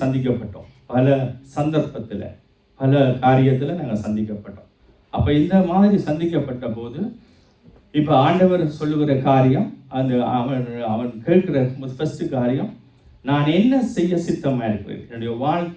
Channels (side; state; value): both; identical; correlation 1.00